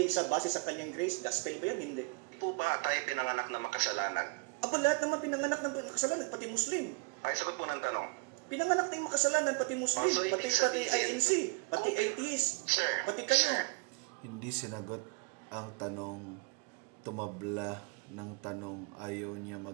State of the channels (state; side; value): quieter; left; 29.7 dB